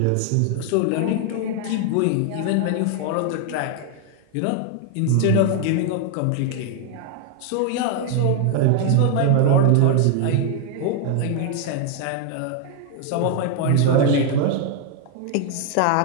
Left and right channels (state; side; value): different; both; correlation 0.00